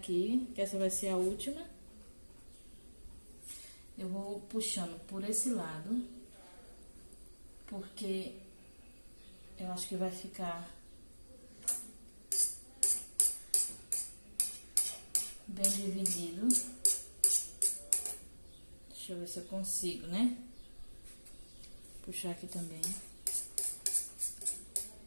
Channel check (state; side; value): inverted; both; correlation -1.00